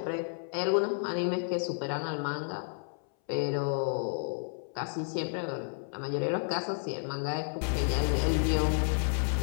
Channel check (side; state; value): right; silent; 57 dB below the other